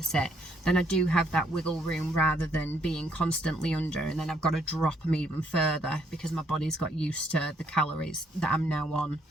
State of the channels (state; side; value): normal; both; correlation 0.70